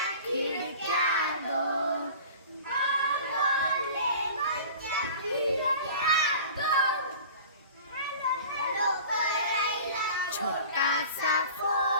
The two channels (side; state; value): both; inverted; correlation -0.41